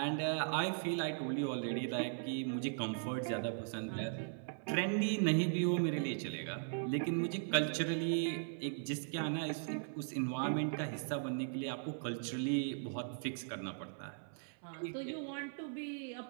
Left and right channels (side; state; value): left; silent; 52 dB below the other